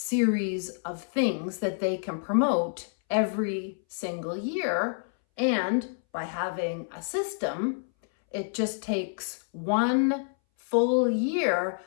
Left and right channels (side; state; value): right; silent; 59 dB below the other